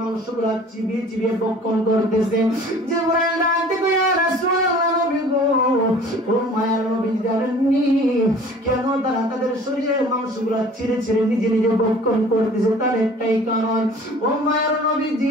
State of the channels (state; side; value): normal; both; correlation 0.48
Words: চিবিয়ে চিবিয়ে ভক্ষণ করতেছে? জিবরাইল ডাক দেবো, ইয়া রাসূলুল্লাহ নবী গো, ও মায়ার নবী জানেননি কেন তারা তাদের শরীরের মাংসগুলা ছিঁড়ে ছিঁড়ে নিজে নিজে ভক্ষণ করতেছে? তার একটাই কারণ, ও মায়ার